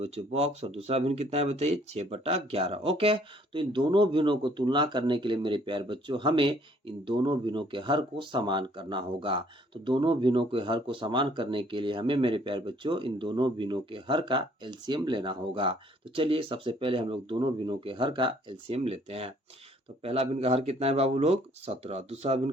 बॉक्स, और दूसरा भिन्न कितना है बताइए 6/11। ओके, तो इन दोनों भिन्नों को तुलना करने के लिए मेरे प्यारे बच्चों हमें इन दोनों भिन्नों के हर को समान करना होगा। तो दोनों भिन्नों के हर को समान करने के लिए हमें मेरे प्यारे बच्चों इन दोनों भिन्नों के हर का एलसीएम लेना होगा। तो चलिए सबसे पहले हम लोग दोनों भिन्नों के हर का एलसीएम लेते हैं। तो पहला भिन्न का हर कितना है बाबू लोग 17, दूसरा भिन्न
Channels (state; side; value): normal; both; correlation 0.61